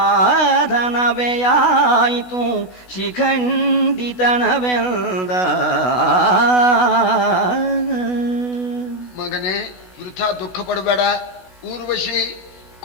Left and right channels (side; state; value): right; late; 16 ms